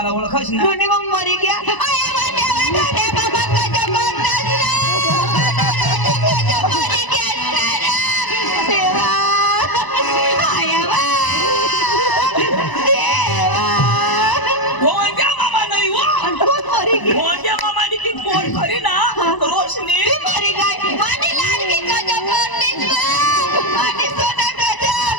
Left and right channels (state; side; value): late; right; 1.0 ms